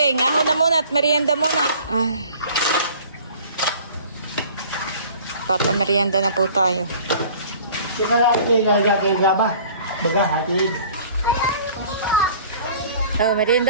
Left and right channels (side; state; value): both; inverted; correlation -0.49